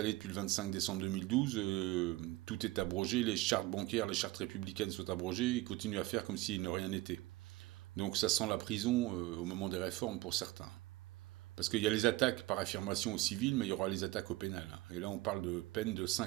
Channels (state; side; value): quieter; left; 18.6 dB